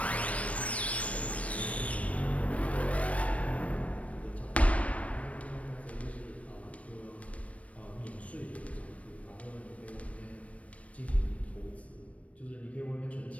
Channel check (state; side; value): late; right; 0.065 ms